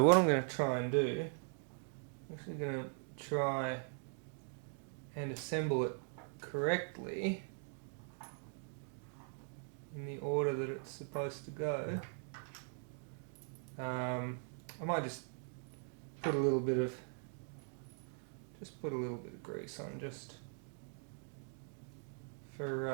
what I'm going to try and do, I'm actually going to try and assemble it correctly in the order that it's supposed to go. I might just put a little bit of grease on just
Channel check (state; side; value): silent; left; 50 dB below the other